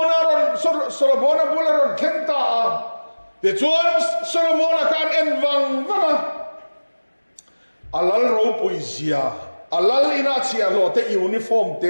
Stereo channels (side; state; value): both; inverted; correlation -1.00